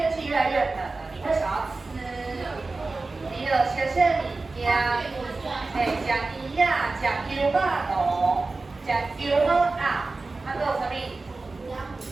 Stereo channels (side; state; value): left; quieter; 3.6 dB